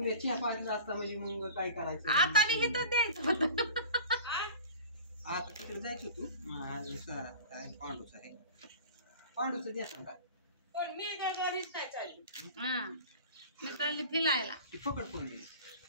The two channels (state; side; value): inverted; both; correlation -0.39